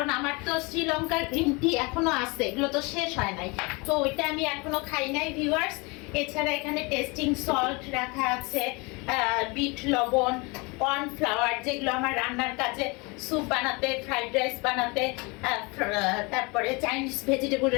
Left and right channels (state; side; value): quieter; right; 27.7 dB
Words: আমার তো শ্রীলঙ্কার গ্রিন টি এখনো আছে, এগুলো তো শেষ হয় নাই। তো ওইটা আমি এখনো খাই নাই ভিউয়ার্স। এছাড়া এখানে টেস্টিং সল্ট রাখা আছে, বিট লবণ, কর্নফ্লাওয়ার, যেগুলো আমার রান্নার কাজে স্যুপ বানাতে, ফ্রাইড রাইস বানাতে, তারপরে চাইনিজ ভেজিটেবল